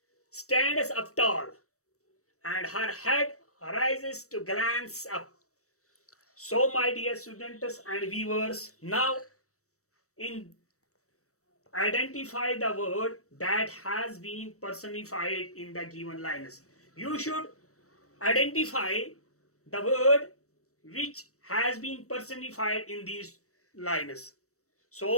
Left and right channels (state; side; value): late; right; 0.65 ms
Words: stands up tall, and her head rises to glance up. So, my dear students and viewers, now in identify the word that has been personified in the given lines. You should identify the word which has been personified in these lines.